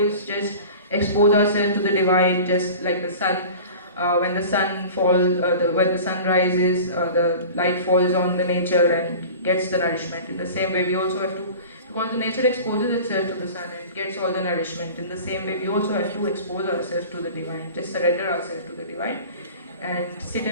just expose ourselves to the divine, just like the sun. When the sun falls, when the sun rises, the light falls on the nature and gets the nourishment. In the same way we also have to, because the nature exposes itself to the sun and it gets all the nourishment. In the same way we also have to expose ourselves to the divine, just surrender ourselves to the divine and sit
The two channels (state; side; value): inverted; both; correlation -0.39